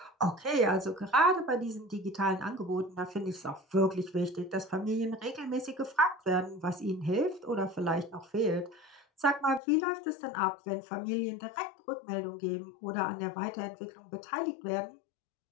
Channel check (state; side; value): drops out; right; at 9.6 s